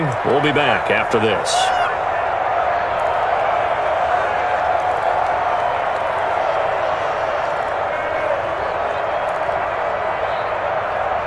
We'll be back after this.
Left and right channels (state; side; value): identical; both; correlation 1.00